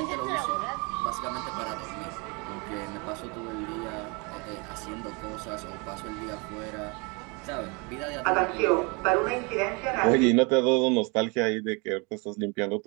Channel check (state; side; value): quieter; left; 30.4 dB